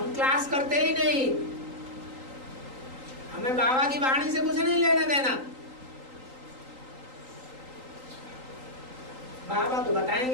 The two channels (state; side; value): late; left; 3.8 ms